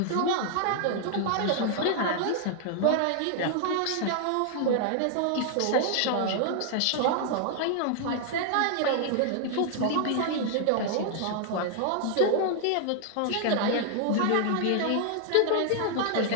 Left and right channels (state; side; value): different; both; correlation 0.00